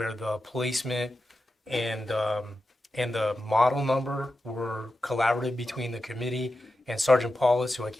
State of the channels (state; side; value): normal; both; correlation 0.90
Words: the placement and the model number were collaborative between the committee and Sergeant Paulus, who I